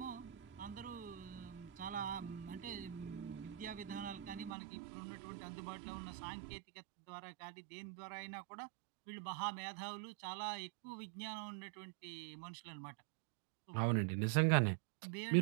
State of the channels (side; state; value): left; drops out; at 4.5 s